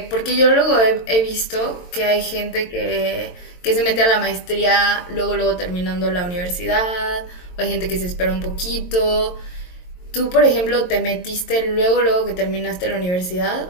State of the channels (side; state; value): right; late; 22 ms